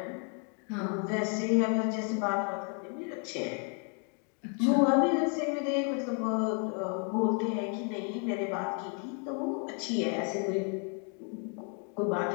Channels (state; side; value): quieter; right; 39.6 dB